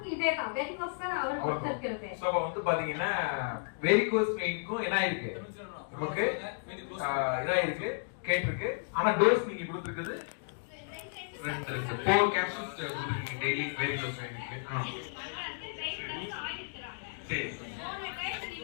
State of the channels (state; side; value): silent; right; digital silence